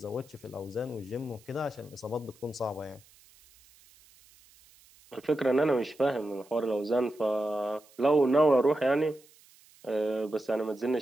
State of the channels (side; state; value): right; noise; hiss, 27 dB below the sound